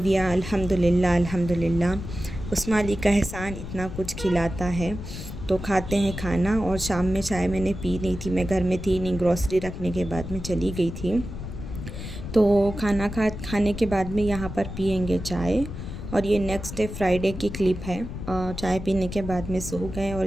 अल्हम्दुलिल्लाह अल्हम्दुलिल्लाह, उस्मा अली का एहसान इतना कुछ खिलाता है। तो खाते हैं खाना। और शाम में चाय मैंने पी नहीं थी, मैं घर में थी नहीं, ग्रॉसरी रखने के बाद में चली गई थी। तो खाना खाने के बाद में यहाँ पर पियेंगे चाय। और ये नेक्स्ट डे फ्राइडे की क्लिप है। चाय पीने के बाद में सो गए, और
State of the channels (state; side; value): noise; left; rumble, 9 dB below the sound